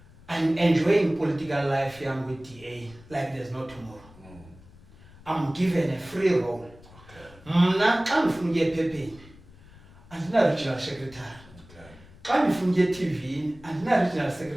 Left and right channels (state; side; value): noise; left; rumble, 23 dB below the sound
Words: I'm enjoying political life here with DA like there's no tomorrow. I'm given a free role. Mna xa ndifuna ukuya ephepheni andina-regional secretary. Xa ndifuna ukuya eTV andina-regional